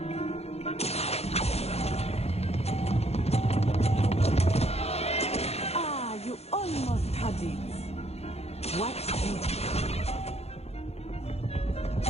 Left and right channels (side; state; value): right; late; 0.30 ms